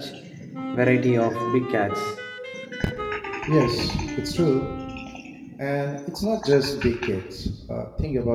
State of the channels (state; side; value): identical; both; correlation 1.00